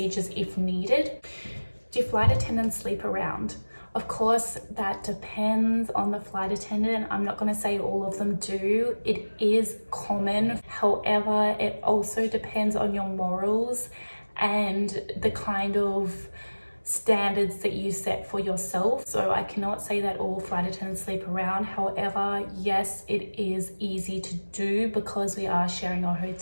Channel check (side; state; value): both; inverted; correlation -1.00